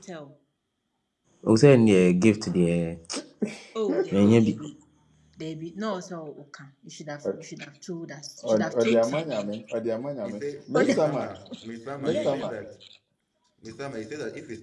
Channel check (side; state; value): both; identical; correlation 1.00